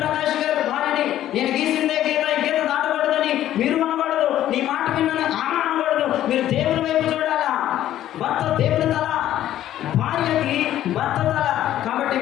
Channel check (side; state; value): right; quieter; 12.5 dB